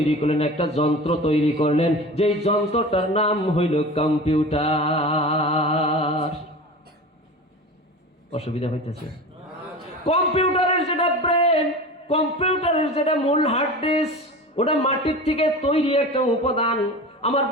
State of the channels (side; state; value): both; normal; correlation 0.33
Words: করলেন, একটা যন্ত্র তৈরি করলেন, যেই যন্ত্রটার নাম হইল কম্পিউটার। অসুবিধা হইতেছে? কম্পিউটারের যেটা ব্রেন, কম্পিউটারের যেটা মূল হার্ড ডিস্ক, ওটা মাটির থেকে তৈরি একটা উপাদান। আমার